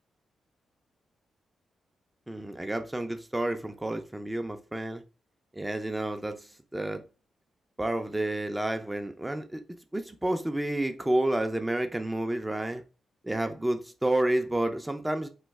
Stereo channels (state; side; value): normal; both; correlation 0.98